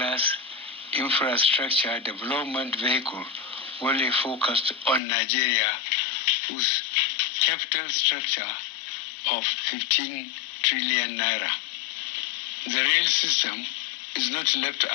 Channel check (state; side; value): drops out; right; at 5.0 s